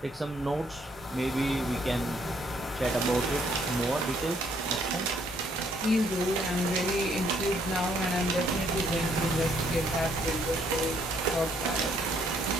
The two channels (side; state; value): both; normal; correlation 0.67